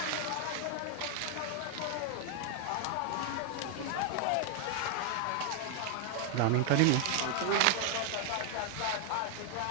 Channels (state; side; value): different; both; correlation 0.00